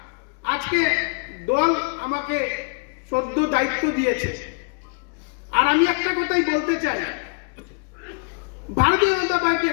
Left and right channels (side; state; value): right; quieter; 34.6 dB